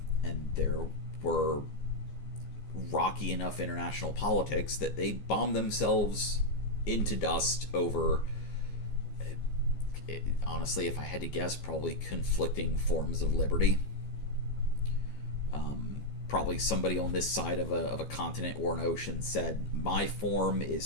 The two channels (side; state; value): right; late; 15 ms